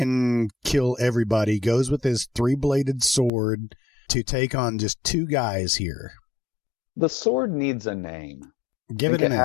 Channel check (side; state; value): right; drops out; at 3.3 s